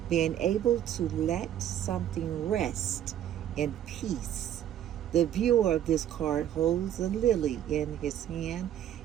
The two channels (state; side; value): quieter; left; 10.9 dB